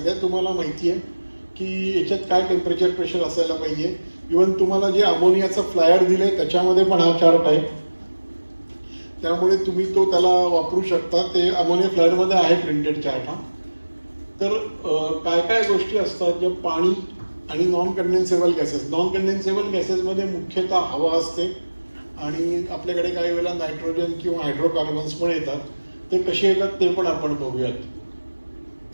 तुम्हाला माहिती आहे की याच्यात काय टेम्परेचर प्रेशर असायला पाहिजे. इवन तुम्हाला जे अमोनियाचं फ्लायर दिलंय त्याच्यामध्ये पण हा चार्ट आहे, त्यामुळे तुम्ही तो त्याला वापरू शकता. ते अमोनिया फ्लायरमध्ये आहे प्रिंटेड चार्ट हा. तर काय काय गोष्टी असतात ज्या पाणी आणि नॉन कंडेन्सेबल गॅसेस. नॉन कंडेन्सेबल गॅसेसमध्ये मुख्यतः हवा असते आणि आपल्याकडे काही वेळेला नायट्रोजन किंवा हायड्रोकार्बन्स पण येतात. ते कसे येतात ते पण आपण बघूयात.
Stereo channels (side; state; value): both; inverted; correlation -1.00